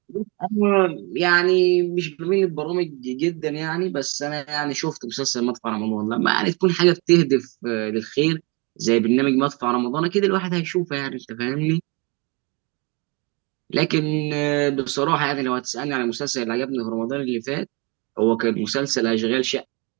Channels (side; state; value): left; quieter; 29.3 dB